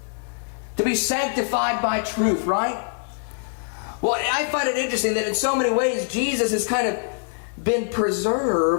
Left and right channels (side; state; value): right; silent; 63 dB below the other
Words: To be sanctified by truth, right? Well, I find it interesting that in so many ways, Jesus is kind of been